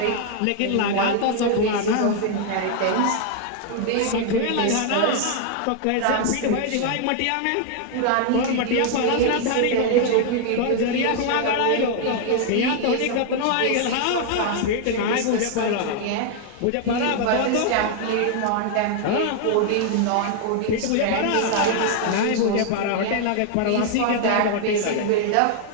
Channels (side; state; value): both; different; correlation 0.00